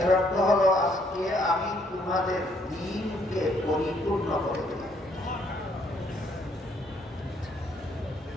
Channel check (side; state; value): both; normal; correlation 0.68